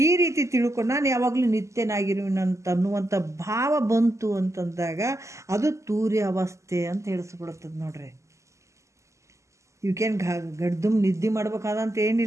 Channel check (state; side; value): late; left; 0.14 ms